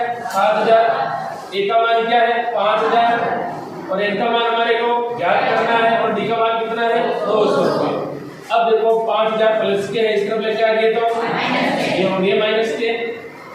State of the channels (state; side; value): identical; both; correlation 1.00